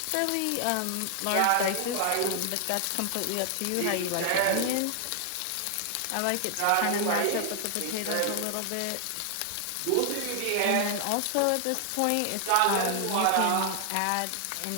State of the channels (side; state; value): both; different; correlation 0.00